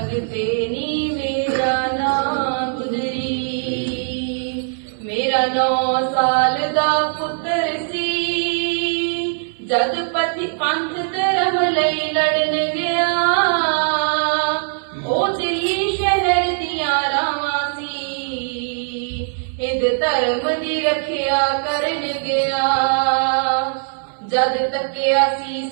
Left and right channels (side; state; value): left; silent; 59 dB below the other